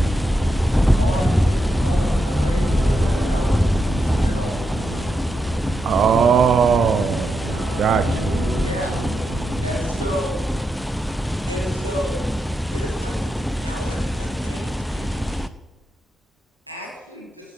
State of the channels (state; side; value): normal; both; correlation 0.85